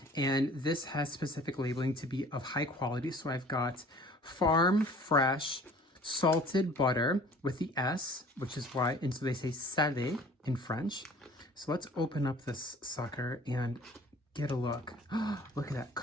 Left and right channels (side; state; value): both; normal; correlation 0.49